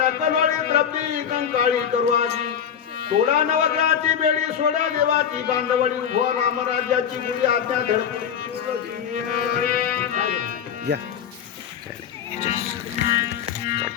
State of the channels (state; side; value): quieter; right; 8.5 dB